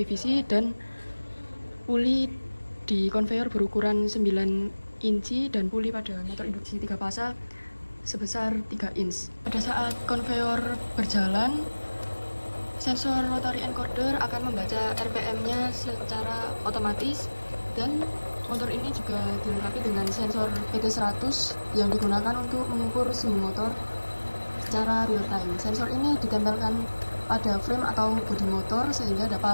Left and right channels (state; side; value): inverted; both; correlation -1.00